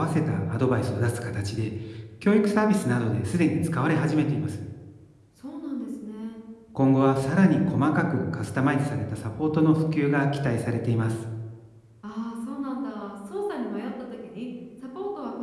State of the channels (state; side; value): identical; both; correlation 1.00